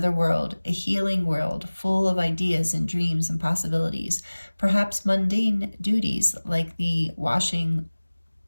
world, a healing world, full of ideas and dreams and possibilities. Perhaps mundane duties like doing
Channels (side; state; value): both; inverted; correlation -1.00